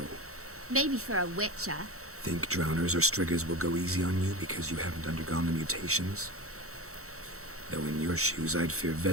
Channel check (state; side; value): late; left; 0.64 ms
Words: Maybe for a witcher. Think drowners or striggers will go easy on you because you haven't undergone the mutations? Though in your shoes, I'd fear